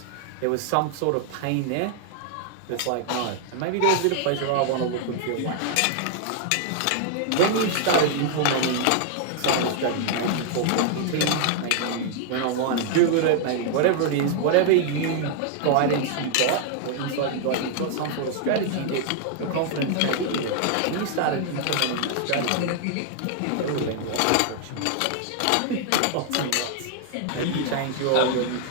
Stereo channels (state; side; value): different; both; correlation 0.00